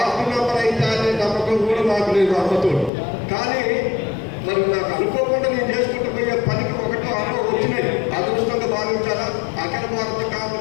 మెంబర్ అయితే అనే నమ్మకం కూడా మాకు లేదు అమ్మతోడు. కానీ మరి నాకు అనుకోకుండా నేను చేసుకుంటూ పోయే పనికి 1-6 వచ్చినాయి. అదృష్టంగా భావించాలా. అఖిల భారత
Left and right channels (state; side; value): drops out; right; at 2.9 s